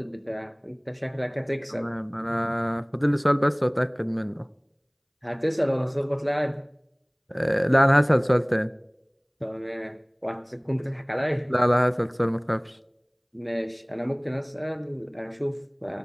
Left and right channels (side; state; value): both; identical; correlation 1.00